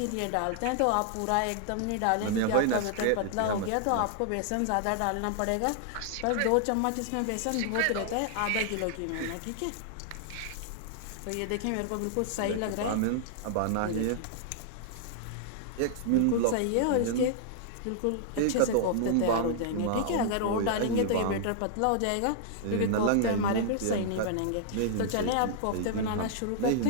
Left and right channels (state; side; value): different; both; correlation -0.01